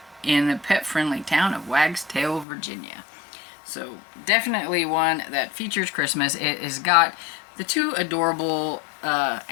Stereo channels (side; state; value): right; drops out; at 2.5 s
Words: in the pet-friendly town of Wagstail, Virginia. So definitely one that features Christmas. It has got the 2 adorable